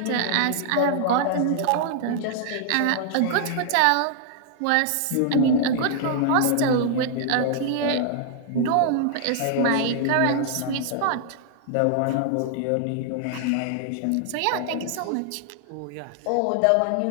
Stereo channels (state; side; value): different; both; correlation 0.00